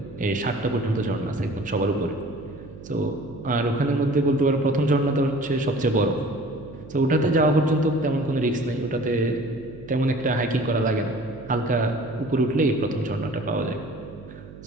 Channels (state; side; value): noise; right; hum, 16 dB below the sound